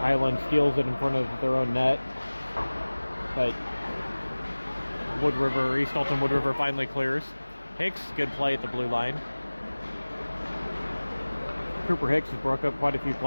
steals it in front of their own net. But East Alton Wood River finally clears. Hicks, good play at the blue line. Cooper Hicks has broke up quite a few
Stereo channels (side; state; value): both; inverted; correlation -1.00